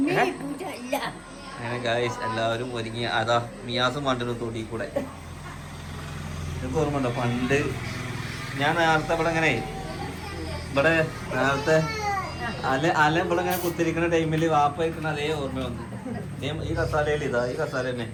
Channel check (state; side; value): identical; both; correlation 1.00